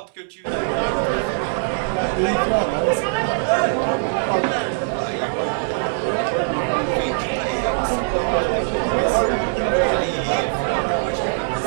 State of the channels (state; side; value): silent; left; digital silence